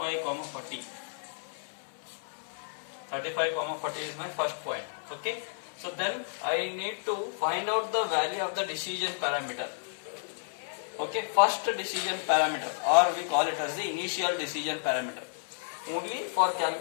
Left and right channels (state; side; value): silent; right; 57 dB below the other